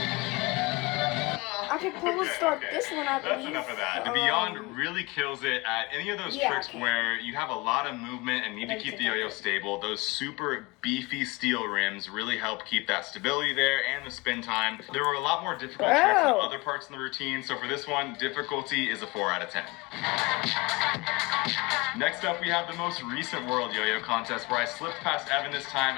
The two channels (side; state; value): right; quieter; 24.3 dB